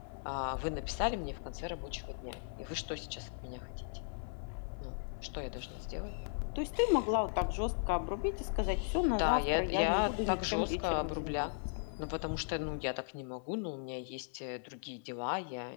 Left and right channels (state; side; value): silent; right; 53 dB below the other